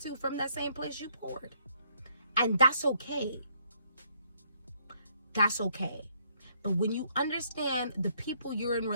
from that same place you poured. And that's okay. That's okay. But when you understand the people you're in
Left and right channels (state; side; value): inverted; both; correlation -0.69